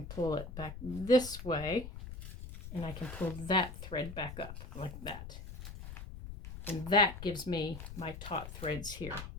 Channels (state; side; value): noise; left; rumble, 10 dB below the sound